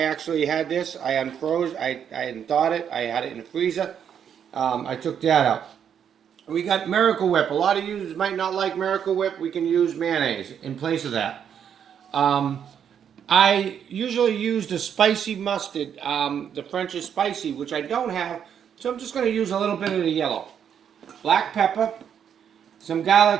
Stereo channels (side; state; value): left; quieter; 8.4 dB